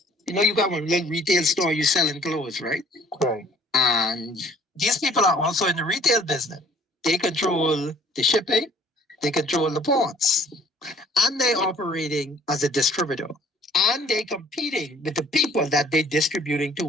you got one little retail store, you selling clothes, right? Right. And these people are also in the retail business. They control the shipping, they control the ports, and they're operating as a distributor. And they're competing with the people that they're distributing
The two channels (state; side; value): normal; both; correlation 0.56